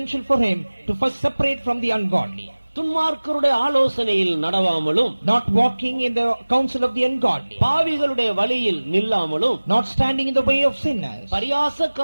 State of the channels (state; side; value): inverted; both; correlation -1.00